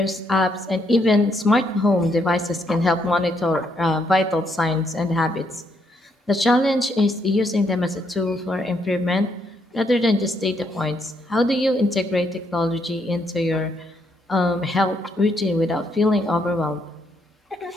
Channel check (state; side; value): normal; both; correlation 0.74